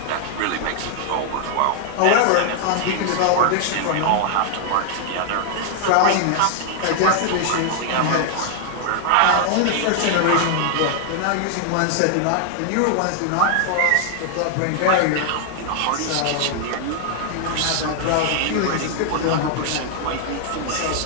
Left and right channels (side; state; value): both; different; correlation 0.00